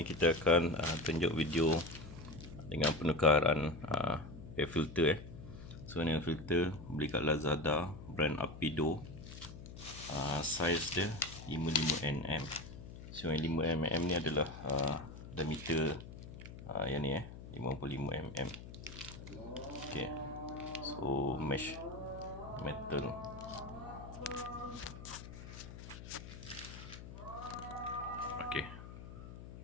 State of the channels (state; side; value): noise; left; hum, 13 dB below the sound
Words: kita akan tunjuk video dengan penukaran air filter. So ni air filter beli kat Lazada, brand Apido. Saiz dia 55mm. So yang 5mm ni adalah diameter yang ni 55mm. Okay, so mesh metal. Okay,